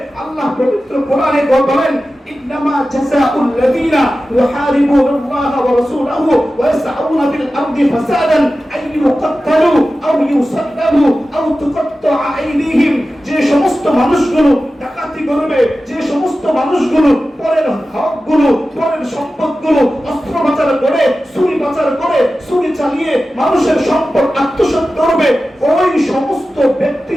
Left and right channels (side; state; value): both; normal; correlation 0.94